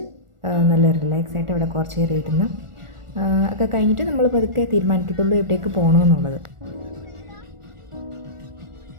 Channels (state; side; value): late; left; 1.4 ms